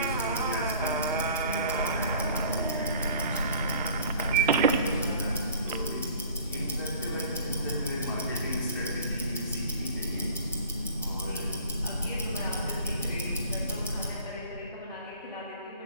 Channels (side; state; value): both; inverted; correlation -0.48